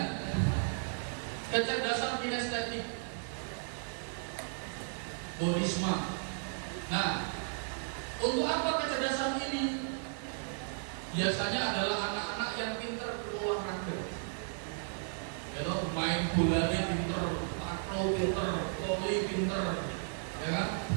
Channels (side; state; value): left; silent; digital silence